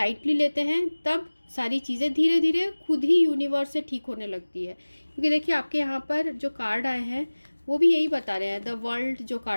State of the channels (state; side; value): inverted; both; correlation -1.00